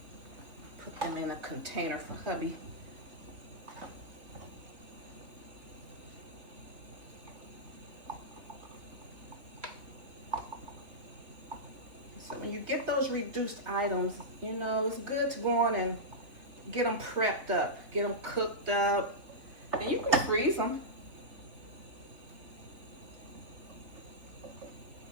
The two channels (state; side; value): late; left; 3.0 ms